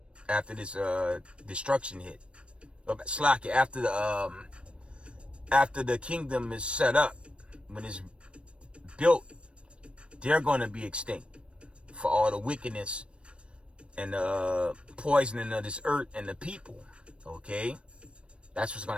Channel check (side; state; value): left; late; 0.058 ms